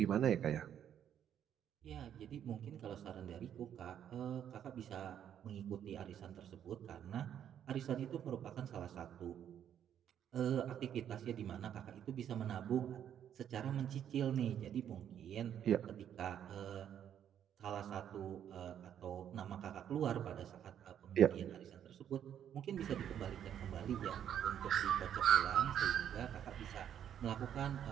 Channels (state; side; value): quieter; left; 9.6 dB